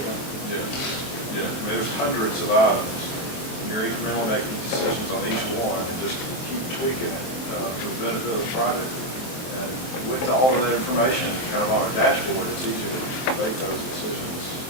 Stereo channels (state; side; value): late; right; 23 ms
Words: know. Yeah, I mean, there's hundreds of items, and you're incrementally making decisions on each one, and just keep tweaking it for the benefit of the project. And with all of that information kind of on our dashboard, it's easier to make those decisions